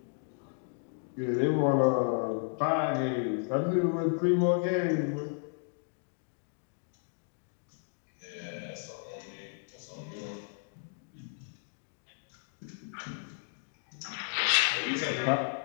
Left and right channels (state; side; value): silent; right; 56 dB below the other